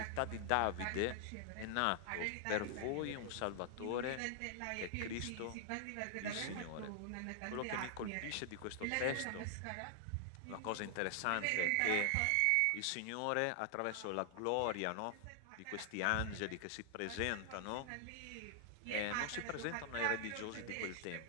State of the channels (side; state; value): both; different; correlation 0.00